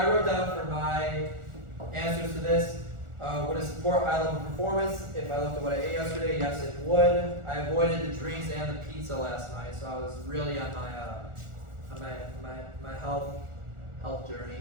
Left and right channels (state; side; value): late; left; 1.4 ms